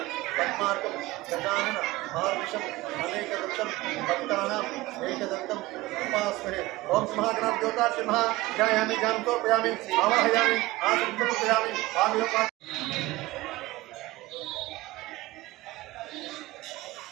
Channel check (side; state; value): left; quieter; 19.4 dB